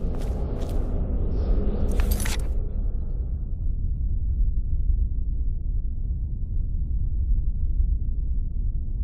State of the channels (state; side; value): identical; both; correlation 1.00